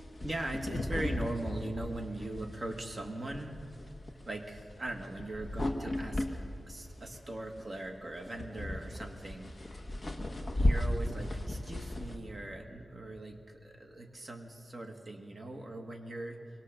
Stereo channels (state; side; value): normal; both; correlation 0.94